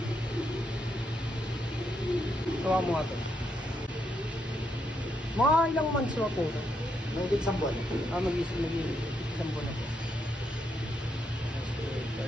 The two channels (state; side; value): normal; both; correlation 0.79